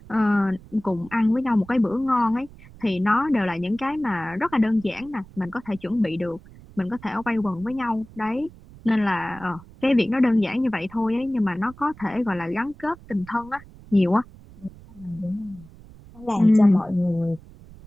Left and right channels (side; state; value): right; noise; rumble, 21 dB below the sound